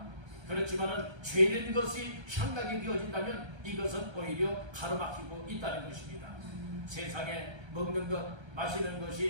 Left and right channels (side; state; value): left; late; 1.3 ms